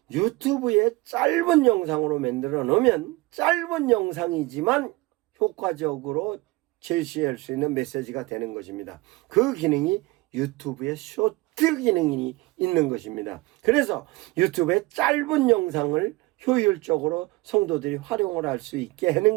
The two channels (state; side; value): quieter; left; 21.9 dB